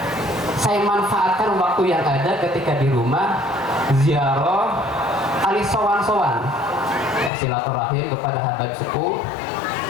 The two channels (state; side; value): drops out; right; at 7.3 s